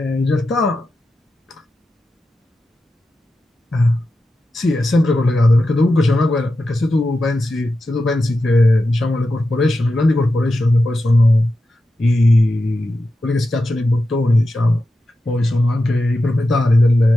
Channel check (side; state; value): both; normal; correlation 0.90